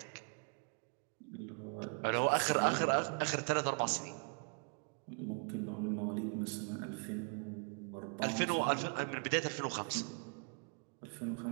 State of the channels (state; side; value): quieter; left; 39.4 dB